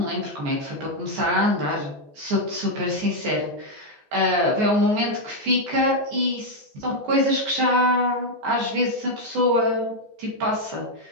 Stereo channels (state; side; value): late; left; 14 ms